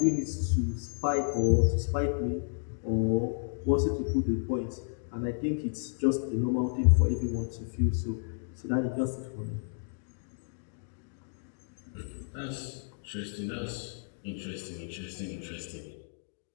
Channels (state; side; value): silent; right; digital silence